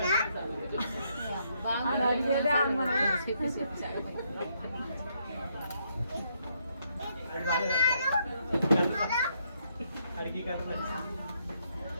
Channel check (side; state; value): both; inverted; correlation -0.75